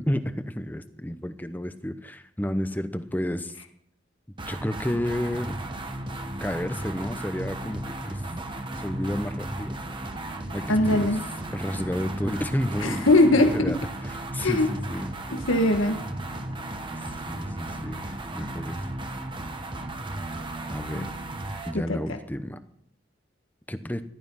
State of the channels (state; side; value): normal; both; correlation 0.56